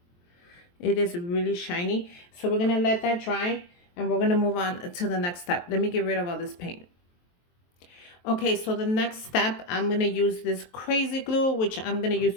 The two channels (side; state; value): right; late; 23 ms